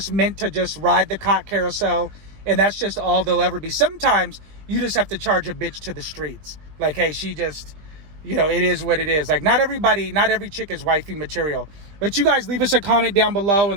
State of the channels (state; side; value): late; left; 20 ms